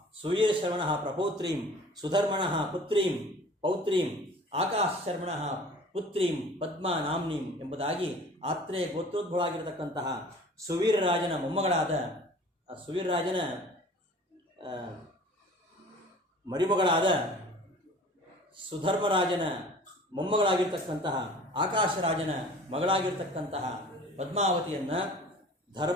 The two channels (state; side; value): normal; both; correlation 0.45